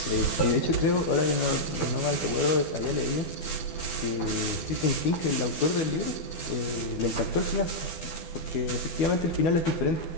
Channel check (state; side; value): late; right; 12 ms